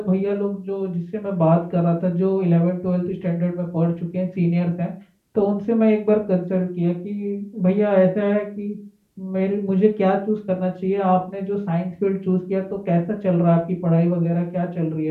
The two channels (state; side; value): identical; both; correlation 1.00